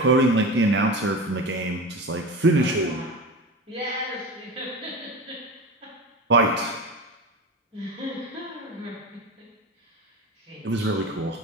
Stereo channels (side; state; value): both; normal; correlation 0.28